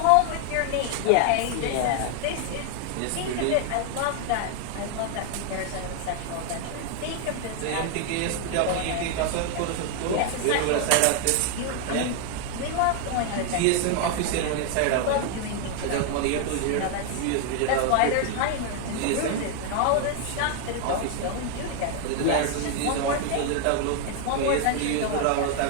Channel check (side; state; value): both; different; correlation 0.00